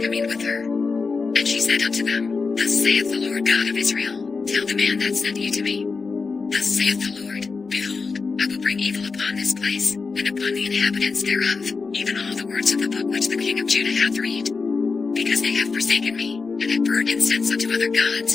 with her. And she said unto them, Thus saith the Lord God of Israel, Tell the man that sent you to me. Thus saith the Lord, Behold, I will bring evil upon this place, and upon the inhabitants thereof, even all the words of the book which the king of Judah hath read. Because they have forsaken me, and have burned incense unto other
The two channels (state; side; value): quieter; right; 4.6 dB